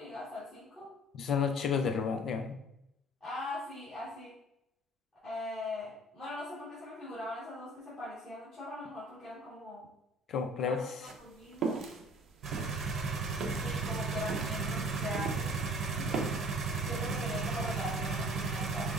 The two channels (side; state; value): both; normal; correlation 0.49